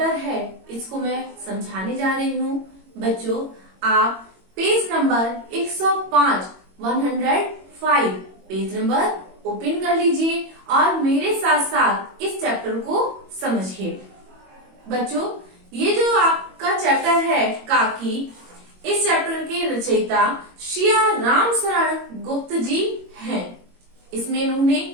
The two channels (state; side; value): late; left; 22 ms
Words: है इसको मैं समझाने जा रही हूँ। बच्चों, आप page number 105 page number open कर लीजिए और मेरे साथ साथ इस चैप्टर को समझिए। बच्चों, ये जो आपका चैप्टर है काकी, इस चैप्टर के रचयिता श्रिया राम शरण गुप्त जी हैं। इसमें इन्होंने